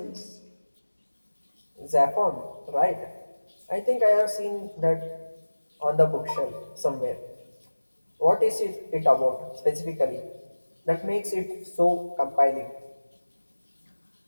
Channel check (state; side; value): inverted; both; correlation -1.00